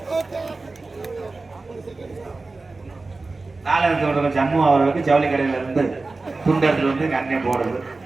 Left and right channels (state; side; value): quieter; left; 3.5 dB